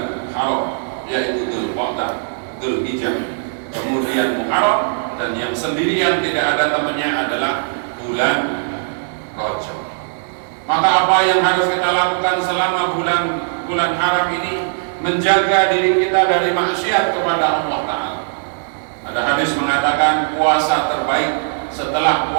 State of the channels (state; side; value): silent; left; digital silence